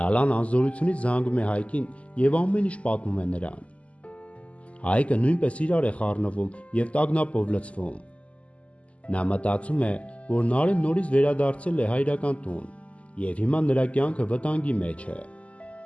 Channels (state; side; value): late; right; 0.064 ms